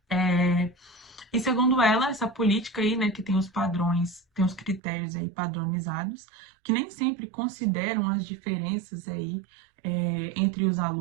E segundo ela, essa política aí, né, que tem os padrões, tem os critérios aí padronizados, que nem sempre consideram as diferenças aí entre os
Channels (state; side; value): drops out; left; at 4.8 s